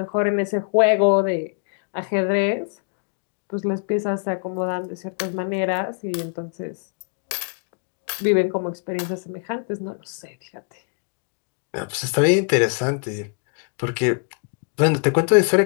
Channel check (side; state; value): right; quieter; 39.7 dB